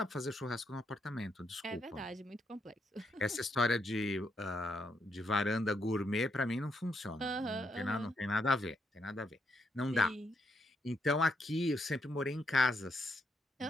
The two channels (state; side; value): normal; both; correlation 0.77